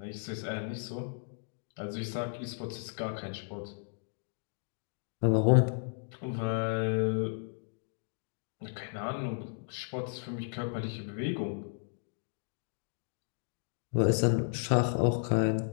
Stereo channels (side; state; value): right; silent; 55 dB below the other